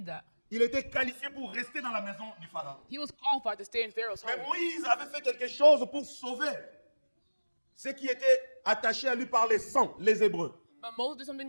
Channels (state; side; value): inverted; both; correlation -1.00